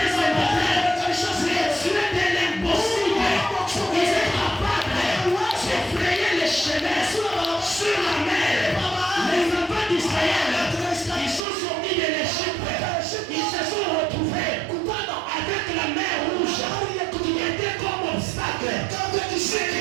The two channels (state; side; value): drops out; left; at 11.5 s